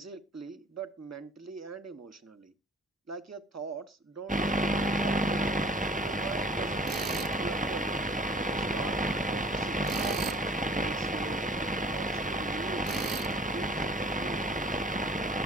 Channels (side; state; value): both; normal; correlation 0.49